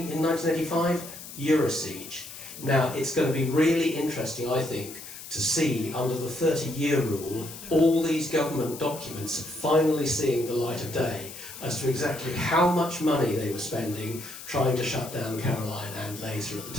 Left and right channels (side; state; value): left; noise; hiss, 13 dB below the sound